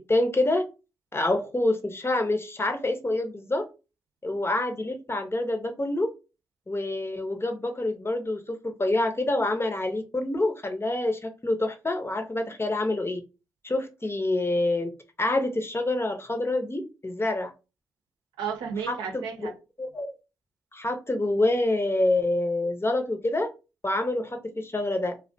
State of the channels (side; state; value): both; normal; correlation 0.85